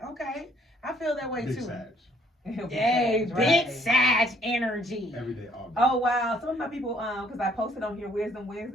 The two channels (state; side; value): normal; both; correlation 0.64